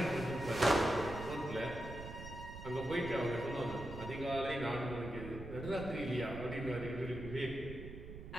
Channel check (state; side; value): noise; right; rumble, 10 dB below the sound